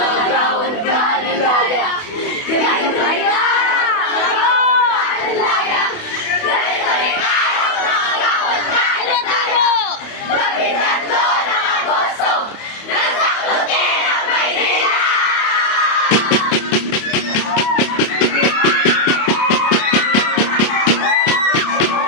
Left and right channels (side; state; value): right; late; 28 ms